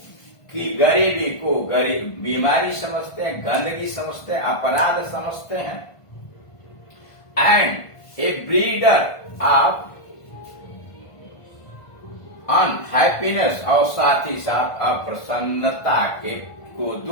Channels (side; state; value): right; late; 1.5 ms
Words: की गरीबी को बीमारी समझते हैं, गंदगी समझते हैं, अपराध समझते हैं। And A breeder of unhappiness, और साथ ही साथ अप्रसन्नता के को